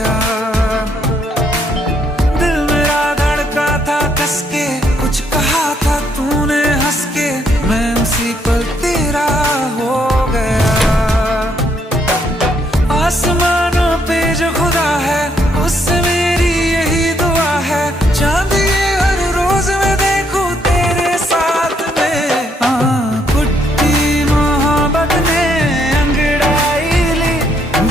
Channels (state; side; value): normal; both; correlation 0.72